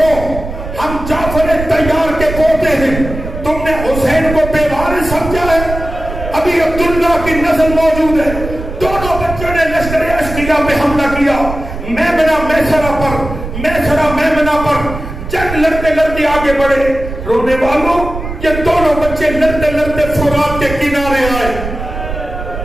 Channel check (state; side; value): noise; right; rumble, 8 dB below the sound